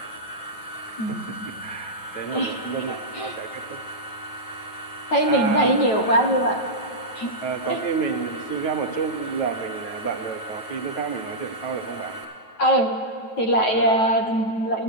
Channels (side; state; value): right; late; 9.2 ms